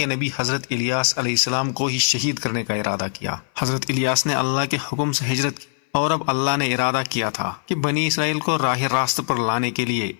نبی حضرت الیاس علیہ السلام کو ہی شہید کرنے کا ارادہ کیا۔ حضرت الیاس نے اللہ کے حکم سے ہجرت کی، اور اب اللہ نے ارادہ کیا تھا کہ بنی اسرائیل کو راہ راست پر لانے کے لیے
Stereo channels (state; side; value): silent; right; 58 dB below the other